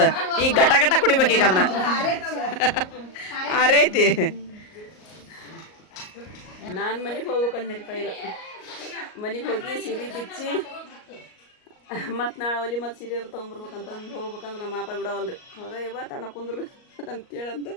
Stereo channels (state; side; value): late; right; 38 ms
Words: ಈಗ ಗಟ ಗಟ ಕುಡಿಬೇಕು ಈಗ ಅದನ್ನ ಆರೈತಿ ನಾನು ಮನೆಗೆ ಹೋಗ್ಬೇಕಂದ್ರಿಪ್ಪ ಈಗ ಮನೆಗೆ ಹೋಗಿ ಸೀರೆ ಬಿಚ್ಚಿ ಮತ್ತು ನಾಳೆ ಒಲಿ ಮತ್ತು ಸೀರೆ ತೊಗೊಂಬರ್ಬೇಕಂತಂದು ಹೋಗ್ಬೇಕಂದ್ರೆ ನಮ್ಮ ಅಪ್ಪ ಬಿಡವಲ್ರಿ ಹೋಗ ಇವ ತಣ್ಣ ಕುಂದ್ರು ಅಂತೇಳಂದು